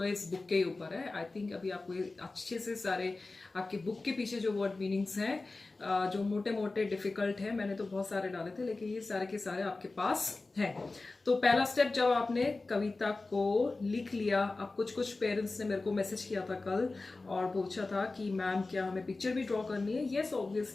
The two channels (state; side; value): quieter; right; 3.4 dB